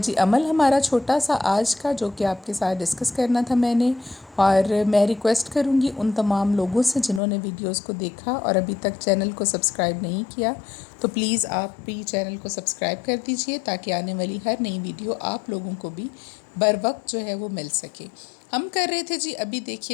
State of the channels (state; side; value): drops out; right; at 7.2 s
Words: عمل ہمارا چھوٹا سا آج کا، جو کہ آپ کے ساتھ ڈسکس کرنا تھا میں نے، اور میں ریکویسٹ کروں گی ان تمام لوگوں سے جنہوں نے ویڈیوز کو دیکھا اور ابھی تک چینل کو سبسکرائب نہیں کیا، تو پلیز آپ بھی چینل کو سبسکرائب کر دیجئے تاکہ آنے والی ہر نئی ویڈیو آپ لوگوں کو بھی بر وقت جو ہے وہ مل سکے۔ ہم کر رہے تھے جی، ابھی